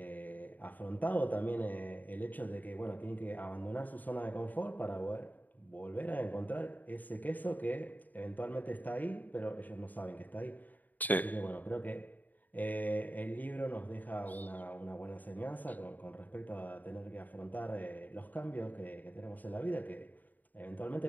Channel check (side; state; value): right; late; 0.083 ms